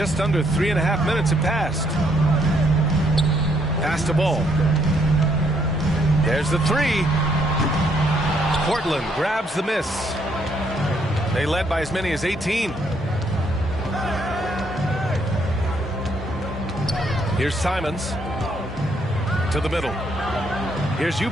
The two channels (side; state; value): both; normal; correlation 0.71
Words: under 3.5 minutes have passed. Pass to Ball. There's the three. Portland grabs the miss. They led by as many as 18. Here's Simons to the middle. Here's